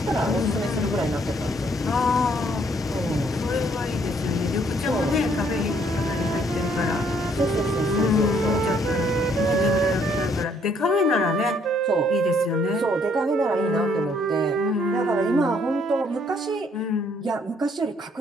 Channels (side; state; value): both; normal; correlation 0.66